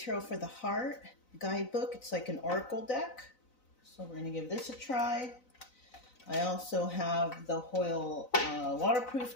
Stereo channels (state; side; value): late; right; 4.0 ms